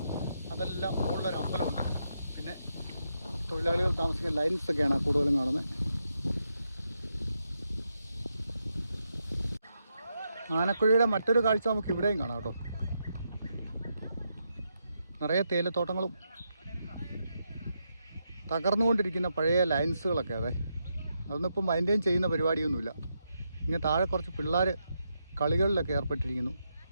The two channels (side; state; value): both; inverted; correlation -0.83